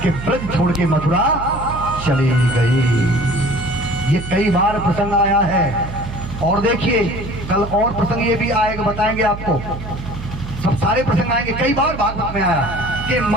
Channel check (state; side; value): noise; right; hum, 10 dB below the sound